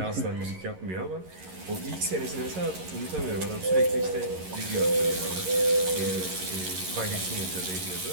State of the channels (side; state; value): left; late; 11 ms